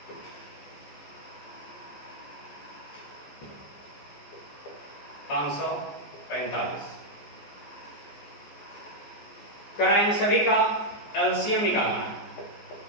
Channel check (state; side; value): late; right; 14 ms